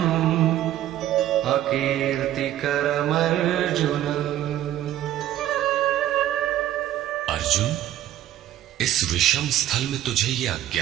अकीर्तिकरमर्जुन। अर्जुन, इस विषम स्थल में तुझे यह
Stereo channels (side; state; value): left; quieter; 12.6 dB